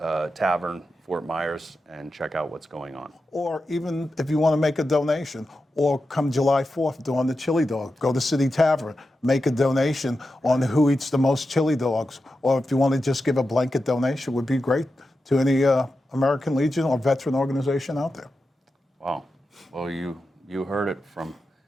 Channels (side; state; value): both; normal; correlation 0.90